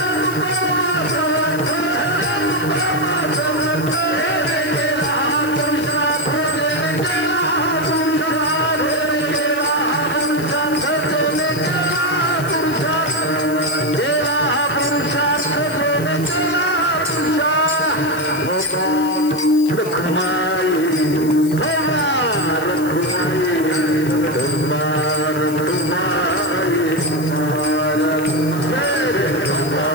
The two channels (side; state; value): left; noise; hiss, 16 dB below the sound